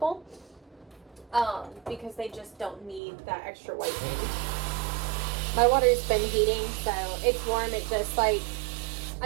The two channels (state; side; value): drops out; left; at 3.0 s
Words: because they just don't need that extra whitening. My water's been heating, so it's warm. It just like,